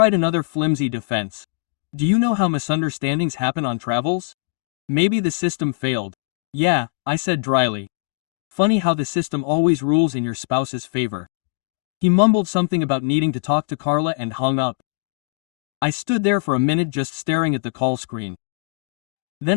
another flimsy defense. Do you know how misunderstandings happen on travels? Maybe the system failed. Yeah, I said dryly. Funny how the system always rules in your spouse's favor. He mumbled something about needing to talk to Carla and hung up. I stood there for a minute just staring at the call screen. Then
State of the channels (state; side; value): silent; right; digital silence